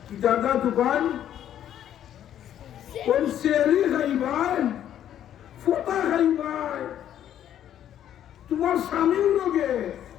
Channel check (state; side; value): quieter; right; 10.7 dB